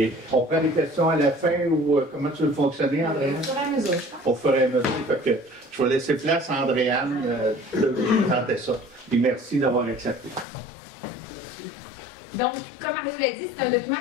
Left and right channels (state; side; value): drops out; right; at 10.5 s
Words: on prend les questions à la fin ou comment tu veux fonctionner, Andréane? Au fur et à mesure, je pense. Au fur et à mesure. Fait que je vais laisser place à Andréane de vous présenter ça. Et merci d'avoir accepté. Donc, comme Marie l'a dit, c'est un document